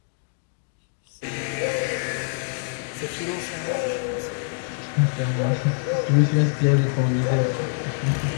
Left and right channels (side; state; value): right; silent; digital silence